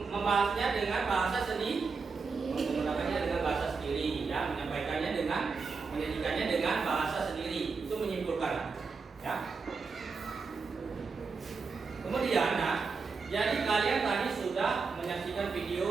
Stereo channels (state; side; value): quieter; left; 4.8 dB